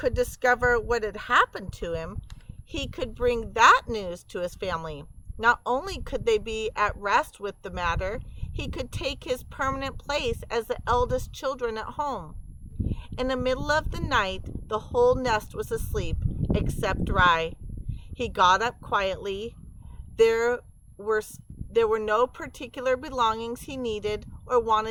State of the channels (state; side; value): identical; both; correlation 1.00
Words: discover what had happened to him, he could bring that news to his family. Not only could they be at rest with the matter, he could take his permanent place as the eldest children at home. In the middle of the night, the whole nest was asleep, except Rye. He got up quietly. There were no particular belongings he needed or